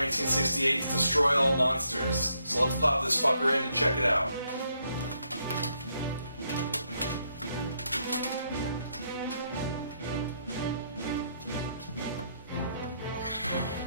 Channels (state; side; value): inverted; both; correlation -0.75